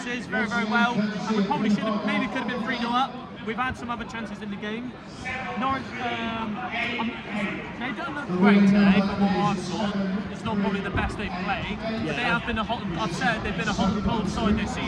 very well, and we probably could have been 3-0 up. We've had some other chances in the game. Norwich, they don't look great today from what I saw. It's not probably the best they've played, but they have been they've been a hot and cold side this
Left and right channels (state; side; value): identical; both; correlation 1.00